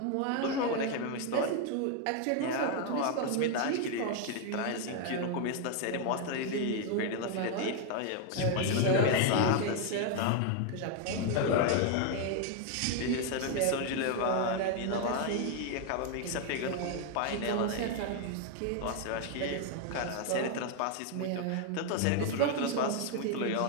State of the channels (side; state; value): both; different; correlation 0.01